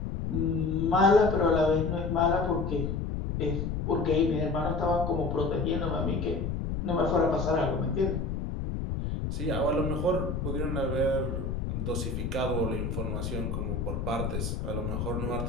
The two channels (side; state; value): left; noise; rumble, 2 dB below the sound